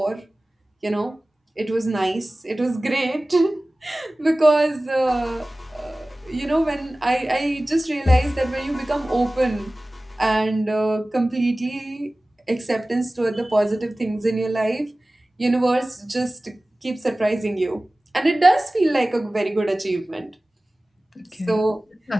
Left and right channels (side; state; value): both; normal; correlation 0.98